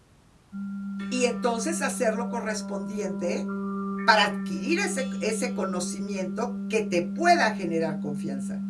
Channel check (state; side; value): identical; both; correlation 1.00